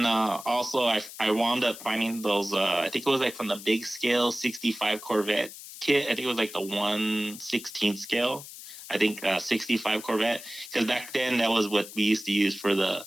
also I wound up finding those, I think it was like from the big scale 65 Corvette kit. I think it was like the 1/16 scale. I think 65 Corvette. Because back then that was what we used to use for the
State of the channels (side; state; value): left; noise; hiss, 14 dB below the sound